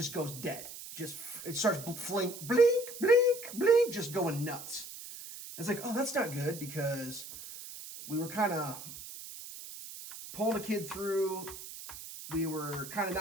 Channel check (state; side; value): noise; right; hiss, 12 dB below the sound